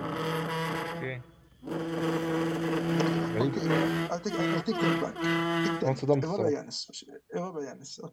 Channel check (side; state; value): both; identical; correlation 1.00